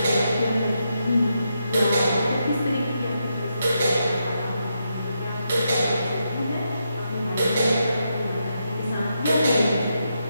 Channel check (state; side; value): inverted; both; correlation -0.83